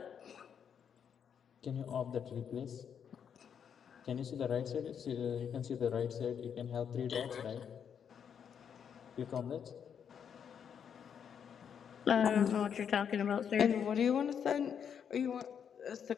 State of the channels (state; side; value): quieter; right; 7.8 dB